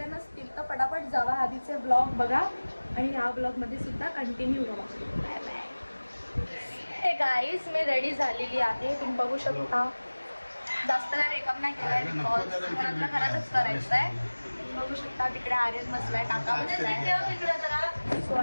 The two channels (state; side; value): inverted; both; correlation -1.00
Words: नसतील तर पटापट जावा, आधीचे ब्लॉग बघा आणि या ब्लॉगमध्ये सुद्धा कंटिन्यू राहा. Bye bye. हे गाईज, मी रेडी झालेली आहे, तुम्ही बघू शकता. जास्त काय मेकअप नाही केला आहे, बिकॉज घरातल्या घरातच करायचं आहे. बघू शकता तिकडे आर्यन बसलाय, काका बसलाय तिकडे जरा. सो